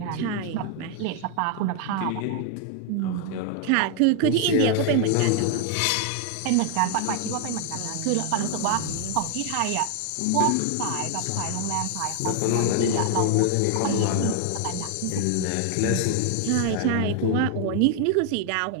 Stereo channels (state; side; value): different; both; correlation 0.00